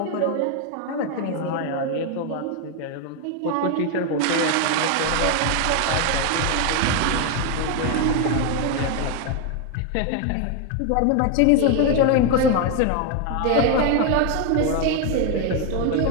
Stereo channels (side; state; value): both; different; correlation 0.01